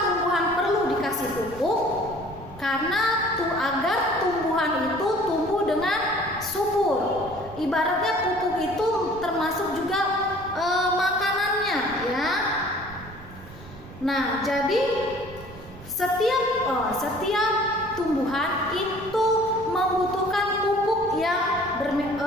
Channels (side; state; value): right; noise; rumble, 17 dB below the sound